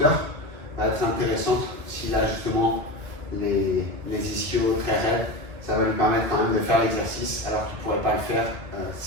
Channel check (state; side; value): late; left; 2.3 ms